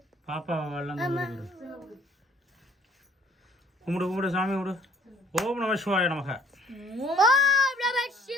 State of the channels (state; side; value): normal; both; correlation 0.56